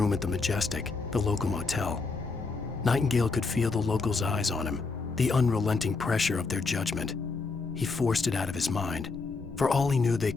at the Majestic, the local motel, Nightingale could feel the locals' eyes on him, the unrelenting pressure of their judgment. He forced it out of his mind. For all he knew, they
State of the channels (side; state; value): right; quieter; 4.2 dB